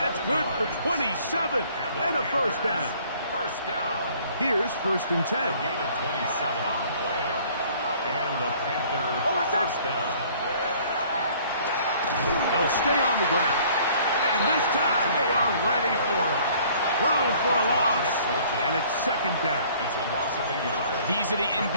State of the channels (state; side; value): inverted; both; correlation -0.55